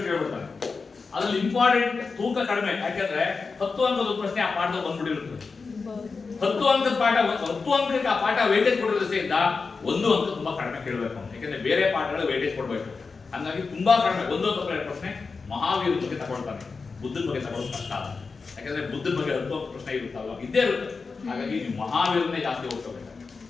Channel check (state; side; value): quieter; right; 4.6 dB